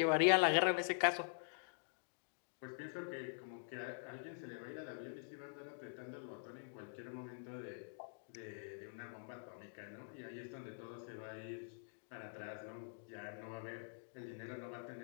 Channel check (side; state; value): right; silent; digital silence